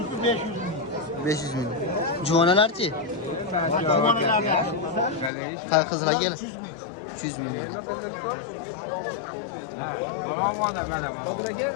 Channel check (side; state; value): right; drops out; at 5.3 s